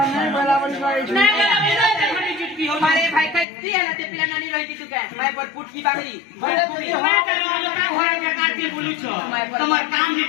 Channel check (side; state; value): right; drops out; at 3.5 s